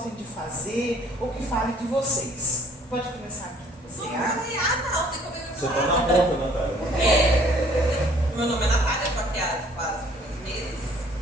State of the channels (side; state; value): both; normal; correlation 0.58